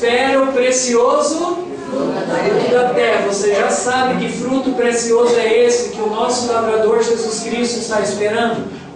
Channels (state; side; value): identical; both; correlation 1.00